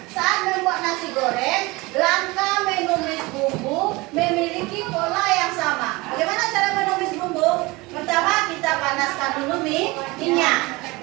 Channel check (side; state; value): left; quieter; 23.2 dB